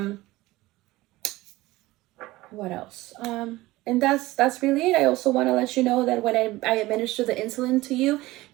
What else? And that's really it. I also want to let you know that when I administer the insulin to you,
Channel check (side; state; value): left; quieter; 18.8 dB